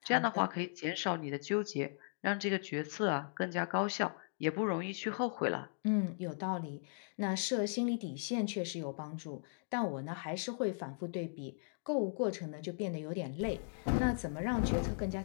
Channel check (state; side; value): silent; right; digital silence